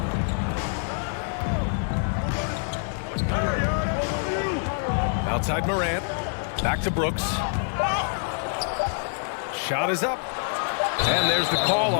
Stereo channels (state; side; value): silent; right; 58 dB below the other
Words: Outside Morant. Back to Brooks. Shot is up. And there's the call